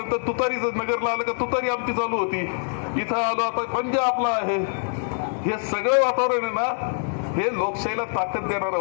तुतारीच नगरला आलं का तुतारी आमची चालू होती. इथं आलो आता पंजा आपला आहे. हे सगळं वातावरण आहे ना, हे लोकशाहीला ताकद देणारं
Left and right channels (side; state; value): right; silent; digital silence